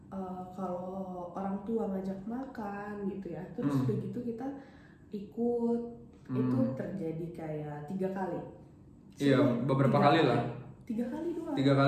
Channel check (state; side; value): identical; both; correlation 1.00